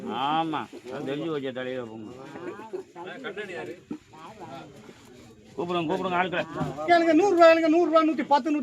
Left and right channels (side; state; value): both; identical; correlation 1.00